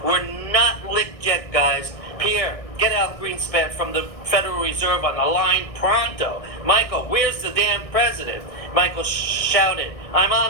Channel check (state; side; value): late; right; 1.6 ms